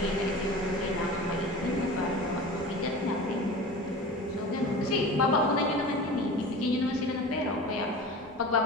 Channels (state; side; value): normal; both; correlation 0.35